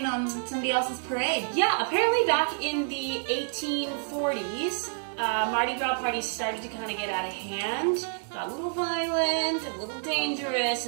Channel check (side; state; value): left; silent; 59 dB below the other